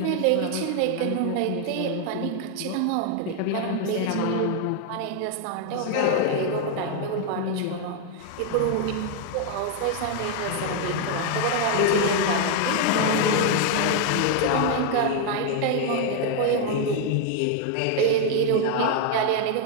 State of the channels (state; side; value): different; both; correlation 0.01